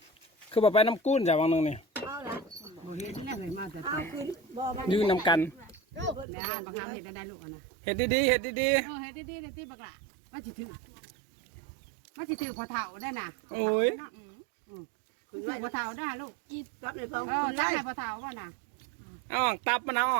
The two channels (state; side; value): drops out; left; at 6.2 s